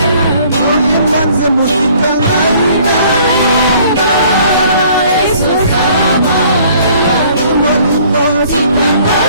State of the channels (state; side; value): inverted; both; correlation -0.57